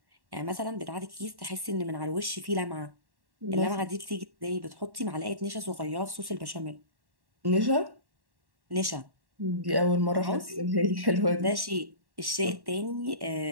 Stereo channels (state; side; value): late; left; 1.1 ms